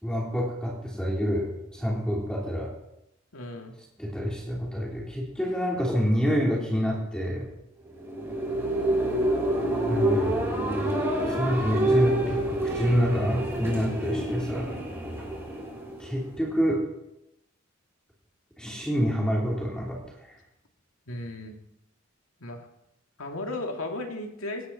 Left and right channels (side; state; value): both; normal; correlation 0.75